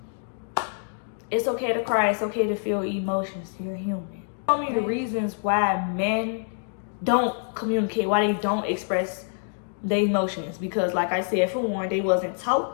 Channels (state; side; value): silent; right; digital silence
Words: it's okay to cry. It's okay to feel emotions. You're human. Tell me the reasons why men don't communicate, why they don't express their emotions. Because, like I said, for one, they wasn't taught